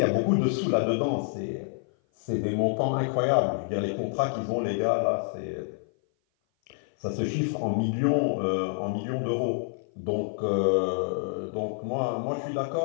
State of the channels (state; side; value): silent; right; 56 dB below the other